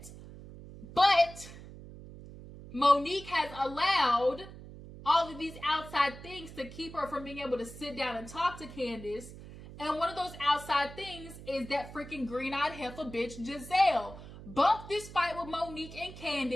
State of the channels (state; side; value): noise; right; hum, 15 dB below the sound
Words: But Monique has allowed all of these outside things to keep her from being able to sit down and talk to Candiace. And one of those outside things is that freaking green-eyed heifer bitch, Gizelle. Bump this fight with Monique and